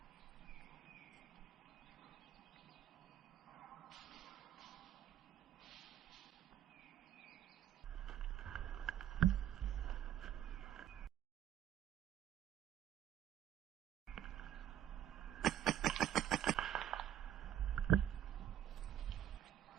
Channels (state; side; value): quieter; left; 11.2 dB